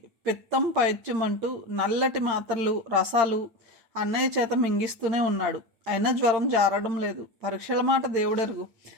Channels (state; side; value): late; left; 9.0 ms